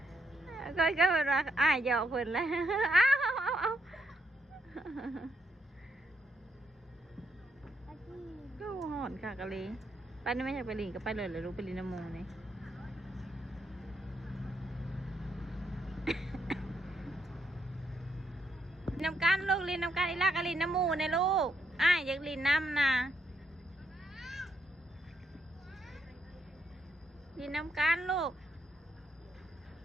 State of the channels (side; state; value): both; normal; correlation 0.78